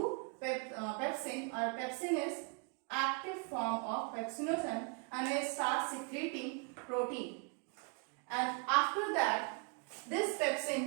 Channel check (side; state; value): left; quieter; 36.1 dB